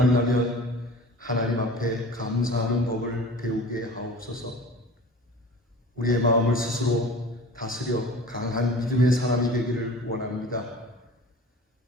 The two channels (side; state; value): both; normal; correlation 0.40